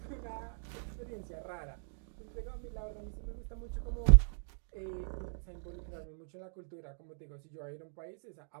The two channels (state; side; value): silent; left; digital silence